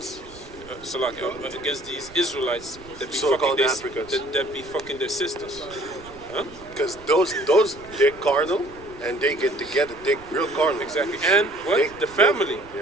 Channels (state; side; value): noise; right; rumble, 20 dB below the sound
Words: Against these Israelites that be fucking their sisters, huh? Because those they're carnal and they get together, they're real carnal. Exactly, and the family.